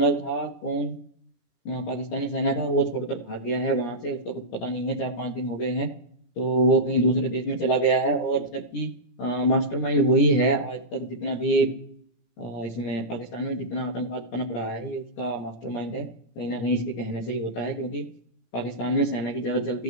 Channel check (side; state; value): right; late; 17 ms